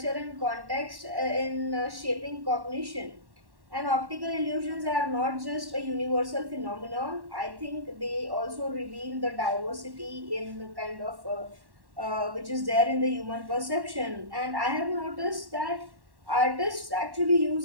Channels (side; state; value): left; late; 1.1 ms